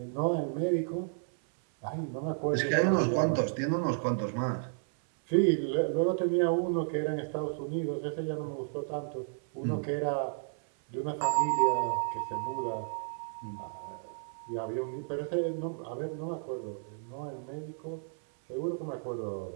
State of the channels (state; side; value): silent; left; 56 dB below the other